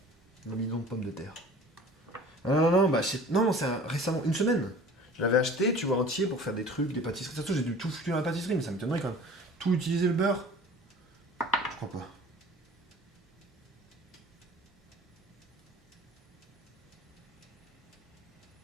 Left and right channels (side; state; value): both; normal; correlation 0.45